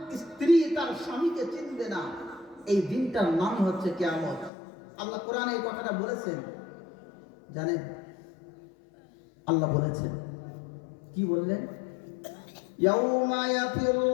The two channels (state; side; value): drops out; right; at 4.5 s